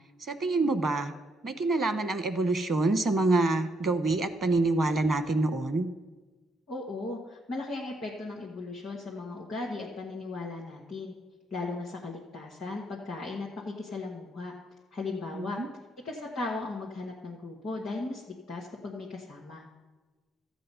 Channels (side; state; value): both; normal; correlation 0.75